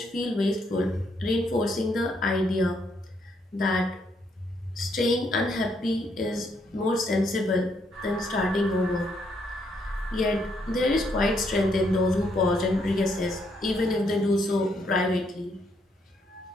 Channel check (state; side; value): normal; both; correlation 0.74